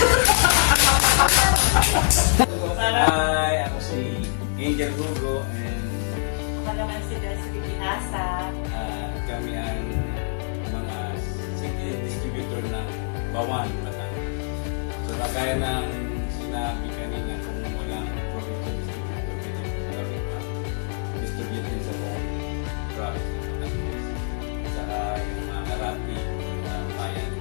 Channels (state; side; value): silent; right; digital silence